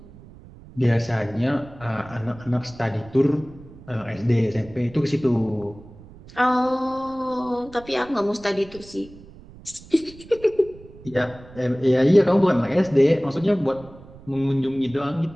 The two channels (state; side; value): noise; right; rumble, 20 dB below the sound